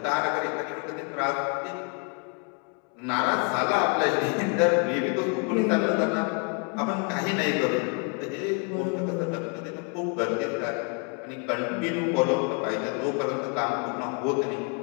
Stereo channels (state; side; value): quieter; right; 36.9 dB